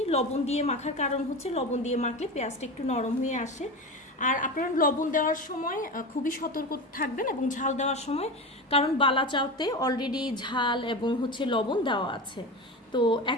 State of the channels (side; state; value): both; normal; correlation 0.25